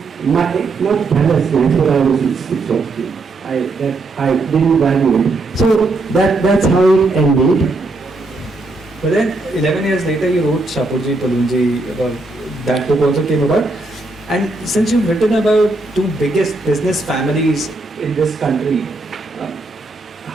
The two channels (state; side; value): quieter; left; 3.2 dB